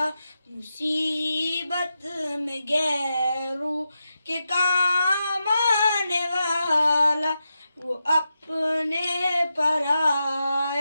मुसीबत में गैरों के काम आने वाला, वो अपने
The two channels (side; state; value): both; inverted; correlation -0.88